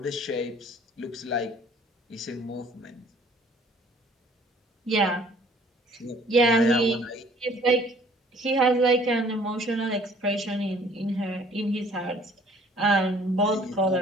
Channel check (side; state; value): both; normal; correlation 0.56